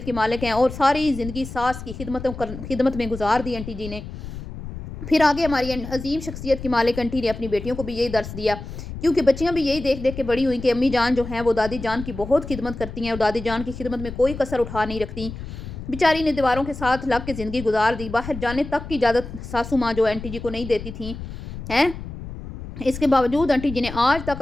کی مالک ہیں, اور ساری زندگی ساس کی خدمت میں گزار دی آنٹی جی نے. پھر آگے ہماری عظیم شخصیت کی مالک آنٹی نے اپنی بیٹیوں کو بھی یہی درس دیا, کیونکہ بچیاں بھی یہی دیکھ دیکھ کے بڑی ہوئیں کہ امی جان جو ہیں وہ دادی جان کی بہت خدمت کرتی ہیں, اور دادی جان کی خدمت میں کوئی کسر اٹھا نہیں رکھتی. بیچاری نے دیواروں کے ساتھ لگ کے زندگی گزار دی, باہر جانے تک کی اجازت ساسو ماں جو آنٹی جی کو نہیں دیتی تھیں ہیں. اس کے باوجود آنٹی جی نے آج تک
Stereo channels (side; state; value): left; noise; rumble, 10 dB below the sound